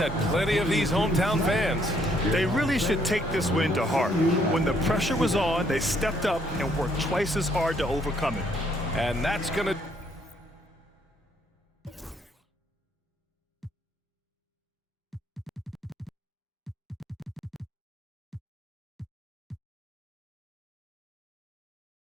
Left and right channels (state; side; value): normal; both; correlation 0.68